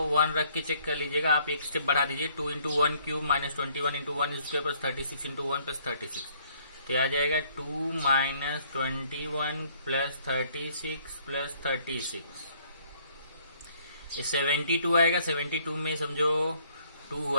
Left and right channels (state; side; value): inverted; both; correlation -0.63